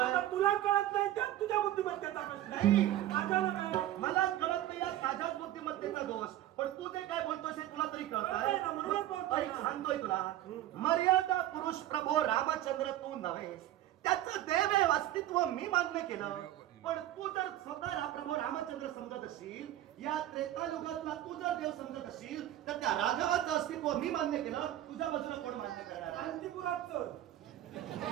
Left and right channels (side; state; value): left; quieter; 13.5 dB